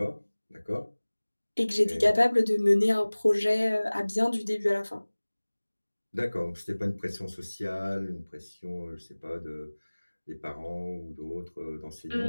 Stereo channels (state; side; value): inverted; both; correlation -1.00